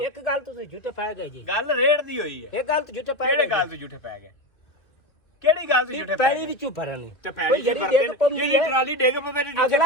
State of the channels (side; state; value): right; late; 2.0 ms